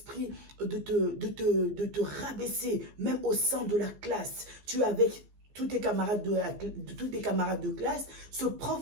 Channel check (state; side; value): late; left; 15 ms